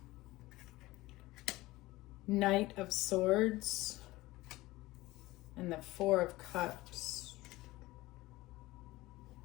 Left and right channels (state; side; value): quieter; right; 18.9 dB